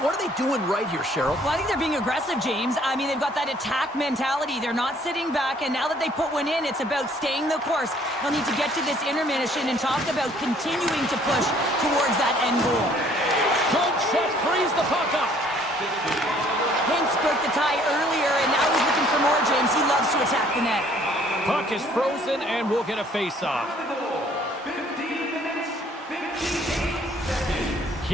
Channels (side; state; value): both; normal; correlation 0.60